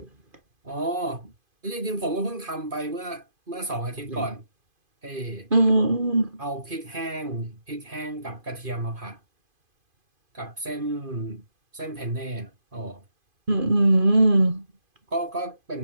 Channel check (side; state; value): left; late; 2.5 ms